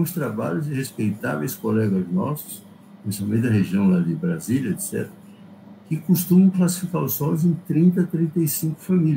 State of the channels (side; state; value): both; identical; correlation 1.00